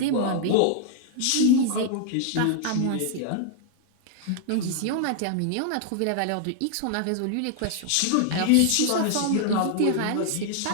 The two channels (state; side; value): different; both; correlation 0.00